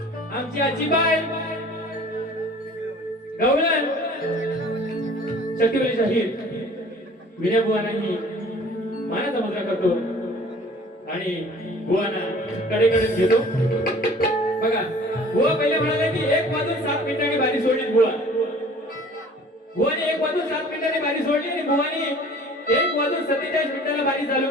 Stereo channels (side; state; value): both; normal; correlation 0.49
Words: आमची आजीबाई गवळण शक्तिवली शाहीर विनय बुवांनाही मानाचा मुद्रा करतो आणि बुवांना कडेकडे घेतो बघा बुवा पहिले म्हणाले की 1 वाजून 7 मिनिटांनी बारी सोडली बुवा बुवाने 1 वाजून 7 मिनिटांनी बारी सोडली आणि बुवानी 1 वाजून 47 मिनिटाला बारी चालू